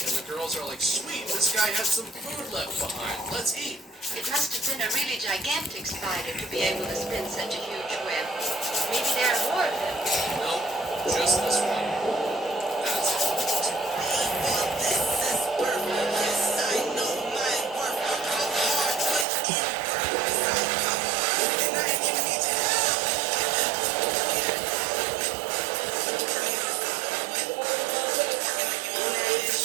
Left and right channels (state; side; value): drops out; left; at 19.2 s